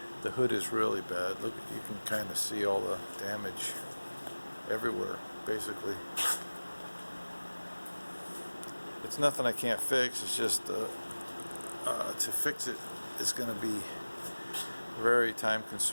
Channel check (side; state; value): both; inverted; correlation -1.00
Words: The hood is really bad. Look, you can kind of see all the damage everywhere, basically. It's nothing I can't fix. It's just to fix it is going to be very time